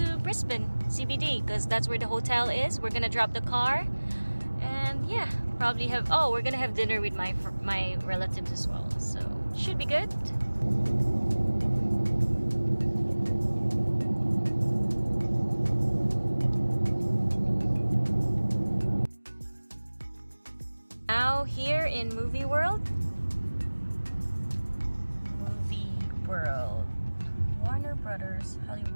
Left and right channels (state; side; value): inverted; both; correlation -1.00